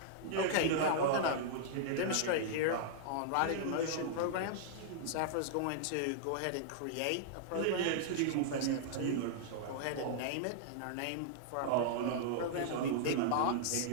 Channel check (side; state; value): both; different; correlation -0.01